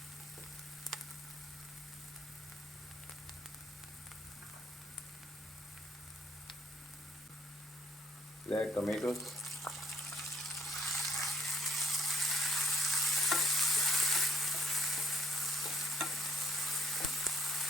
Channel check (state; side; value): normal; both; correlation 0.66